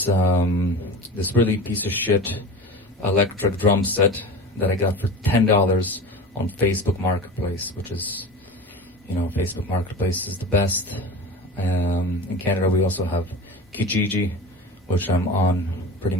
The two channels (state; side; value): normal; both; correlation 0.31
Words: this really piece of shit electric drum set that I got for $10 on Facebook Marketplace, which is, you know, Facebook Marketplace is the best. In Canada we also have Kijiji, which I'm on pretty